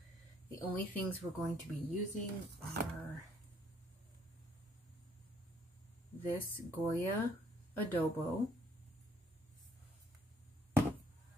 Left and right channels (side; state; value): both; normal; correlation 0.65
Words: the only things we're going to be using are this Goya Adobo,